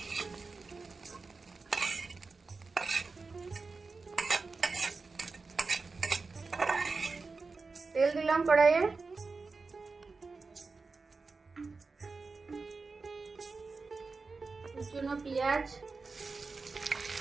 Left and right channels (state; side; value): quieter; left; 4.2 dB